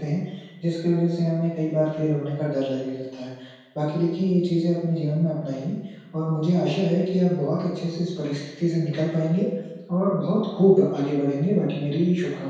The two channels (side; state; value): both; identical; correlation 1.00